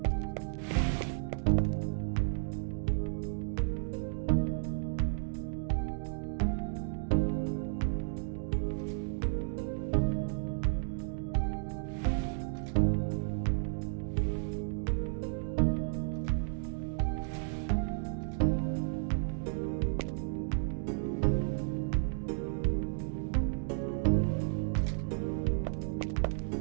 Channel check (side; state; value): left; silent; digital silence